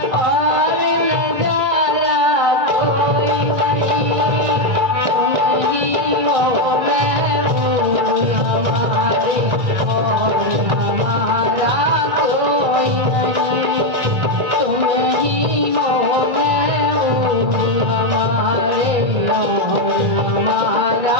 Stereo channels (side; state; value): left; late; 1.8 ms